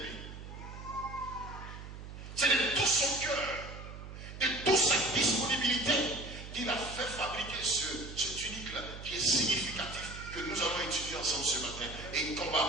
C'est de tout son cœur, de toute sa disponibilité qu'il a fait fabriquer ce tunique-là qui est significatif, que nous allons étudier ensemble ce matin et qu'on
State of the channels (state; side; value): noise; right; hum, 11 dB below the sound